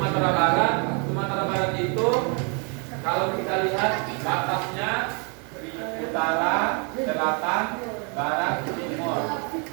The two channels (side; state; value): left; quieter; 35.6 dB